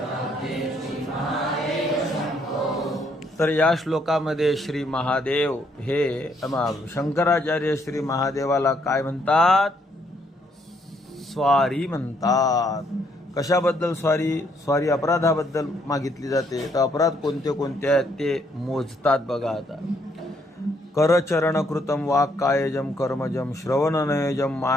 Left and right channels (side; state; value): both; normal; correlation 0.70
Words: तर या श्लोकामध्ये श्री महादेव हे शंकराचार्य श्री महादेवाला काय म्हणतात? स्वारी म्हणतात. कशाबद्दल स्वारी? स्वारी अपराधाबद्दल मागितली जाते. तर अपराध कोणते कोणते आहेत ते मोजतात बघा. आता करचरण कृतम वाक्कायजम कर्मजम श्रवणनयजम